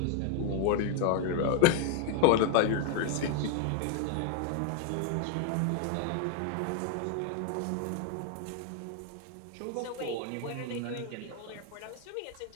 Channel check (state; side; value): different; both; correlation 0.00